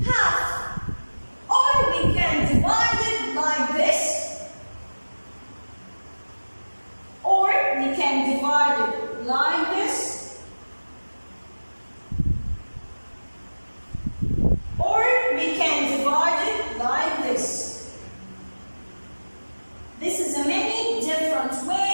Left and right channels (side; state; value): both; inverted; correlation -1.00